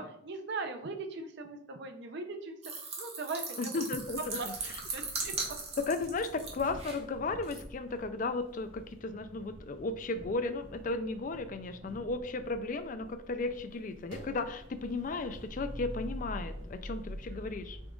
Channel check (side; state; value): both; normal; correlation 0.12